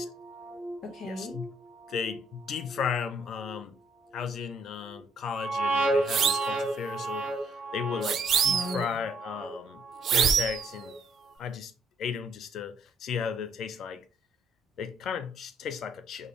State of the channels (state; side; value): normal; both; correlation 0.68